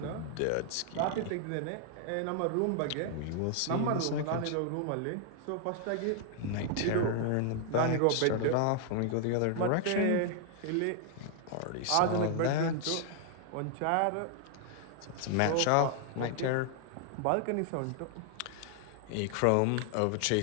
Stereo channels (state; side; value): different; both; correlation 0.00